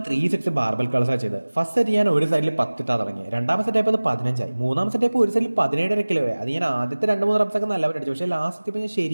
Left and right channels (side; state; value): both; inverted; correlation -1.00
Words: 3 സെറ്റ്സ് ബാർബൽ കളേഴ്സാണ് ചെയ്തത്. ഫസ്റ്റ് സെറ്റ് ഞാൻ ഒരു സൈഡിൽ 10 ഇട്ടാ തുടങ്ങി. 2ാം സെറ്റ് ആയപ്പോൾ 15 ആയി. 3ാം സെറ്റ് ആയപ്പോൾ ഒരു സൈഡിൽ 17.5 കിലോ ആയി. അത് ഞാൻ ആദ്യത്തെ 2-3 റെപ്സ് ഒക്കെ നല്ലപോലെ അടിച്ചു. പക്ഷേ ലാസ്റ്റ് എത്തിയപ്പോൾ ഞാൻ